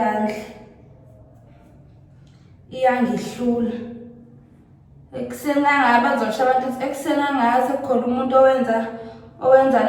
Iyangihlula. Ekuseni ngabe bazosho abantu ukuthi ekuseni ngaze kukhona umuntu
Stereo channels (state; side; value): identical; both; correlation 1.00